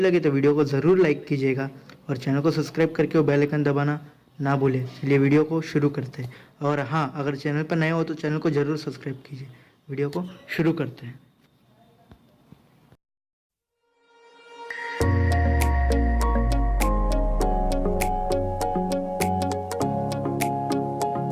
लगे तो वीडियो को ज़रूर लाइक कीजिएगा और चैनल को सब्सक्राइब करके वो बेल आइकन दबाना ना भूलें। चलिए वीडियो को शुरू करते हैं। और हाँ, अगर चैनल पर नए हो तो चैनल को ज़रूर सब्सक्राइब कीजिए। वीडियो को शुरू करते हैं।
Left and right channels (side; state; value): both; identical; correlation 1.00